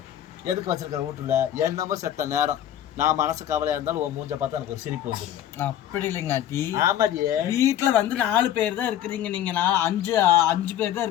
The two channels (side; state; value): right; quieter; 11.3 dB